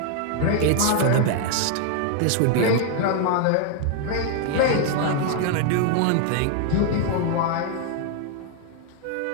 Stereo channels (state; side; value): different; both; correlation 0.00